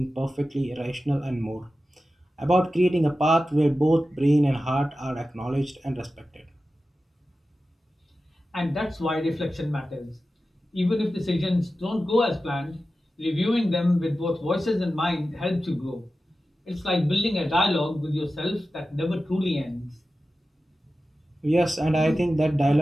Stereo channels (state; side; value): normal; both; correlation 0.93